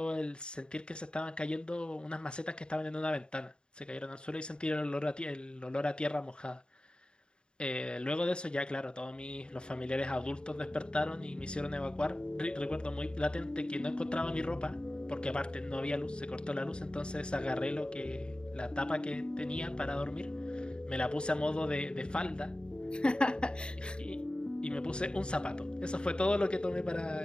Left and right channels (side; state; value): right; late; 0.051 ms